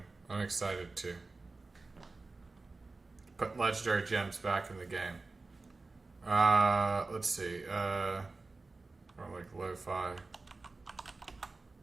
I'm excited too. Put legendary gems back in the game. Let's see. Or like lo-fi.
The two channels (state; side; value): quieter; left; 3.6 dB